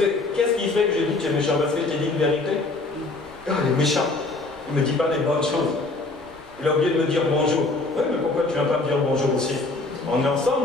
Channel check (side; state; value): right; quieter; 3.3 dB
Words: qu'est-ce qui fait que je dis que tu es méchant? Parce que je t'ai dit une vérité. Il est méchant. Il ne me dit pas les bonnes choses. Il a oublié de me dire bonjour. Oui, mais pourquoi tu ne viens pas me dire bonjour aussi? On est